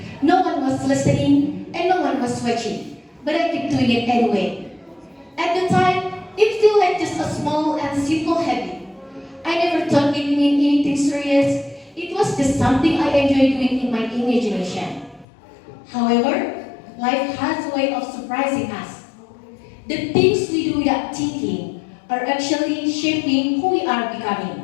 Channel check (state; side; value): drops out; right; at 15.2 s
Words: No one was listening and no one was watching, but I kept doing it anyway. At the time, it felt like just a small and simple habit. I never thought it meant anything serious. It was just something I enjoyed doing in my imagination. However, life has a way of surprising us. The things we do without thinking are actually shaping who we are